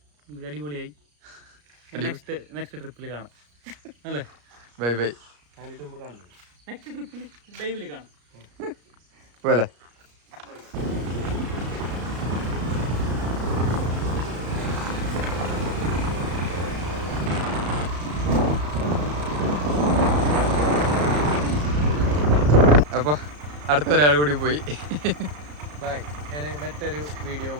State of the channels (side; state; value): left; late; 34 ms